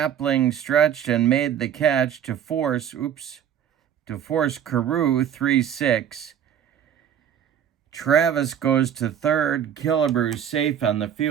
stretched and made the catch to force Carew 3-6. Travis goes to third. Killebrew safe on the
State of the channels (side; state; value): left; quieter; 9.3 dB